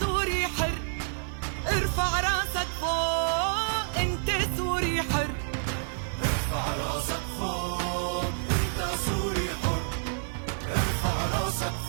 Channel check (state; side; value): silent; left; 56 dB below the other